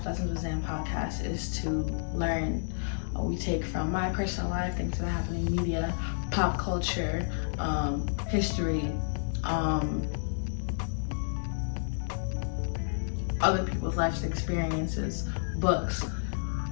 Lessons with Zan podcast is to learn. We take from my personal life, things that happen in media, pop culture, history, other people's life experiences, books,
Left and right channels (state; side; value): silent; right; digital silence